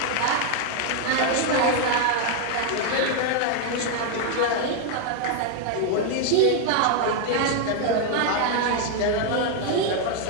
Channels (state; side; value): different; both; correlation 0.00